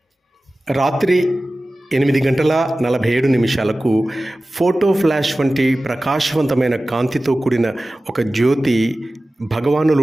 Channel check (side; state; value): both; normal; correlation 0.96